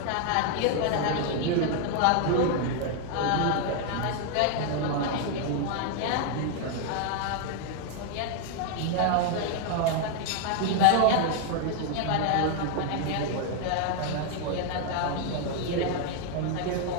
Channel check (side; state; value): both; different; correlation 0.00